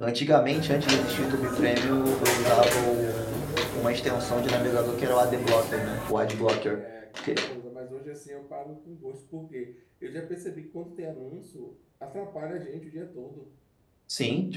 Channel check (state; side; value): identical; both; correlation 1.00